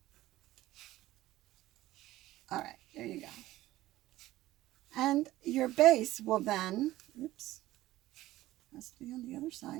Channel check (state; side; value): quieter; left; 16.1 dB